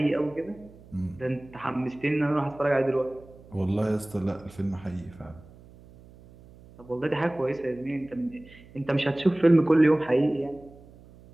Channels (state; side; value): noise; right; hum, 22 dB below the sound